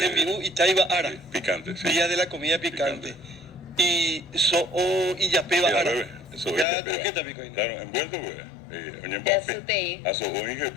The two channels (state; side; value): drops out; right; at 6.7 s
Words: Itaiba ara. Sí, picante, sí. Día de la comida picante. Y y yapeba Ya, ara. bebé. Eso Ya es croqueta picó ahí, ¿no? Claro, envuelto, pues. Oye, Ya sutei. Aso oinge,